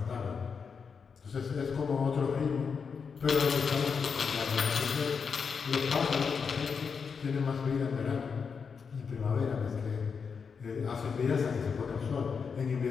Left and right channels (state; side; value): quieter; right; 5.9 dB